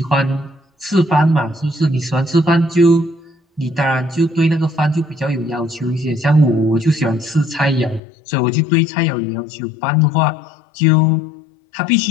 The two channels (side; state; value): right; drops out; at 8.0 s